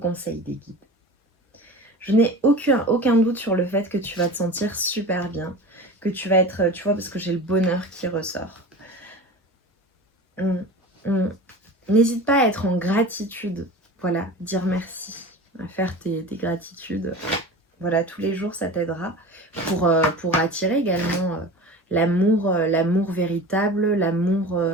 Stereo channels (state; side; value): normal; both; correlation 0.34